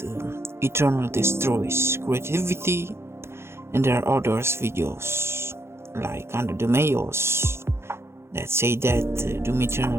Eternal destroys creativity, and there are others videos like Under the Mayos that say that Doom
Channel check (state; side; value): late; left; 0.12 ms